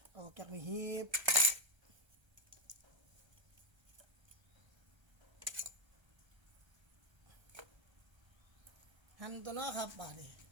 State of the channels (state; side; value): late; left; 1.3 ms